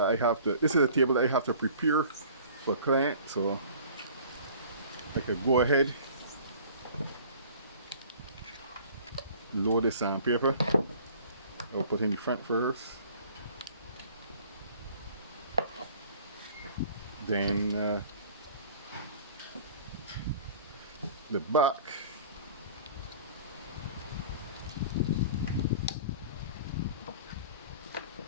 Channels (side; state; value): both; inverted; correlation -0.48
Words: I have to prepare for a client. So I could go ahead, load the sandpaper. I'll put in the front first, then the back.